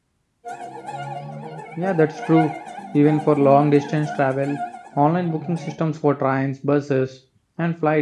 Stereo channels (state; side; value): identical; both; correlation 1.00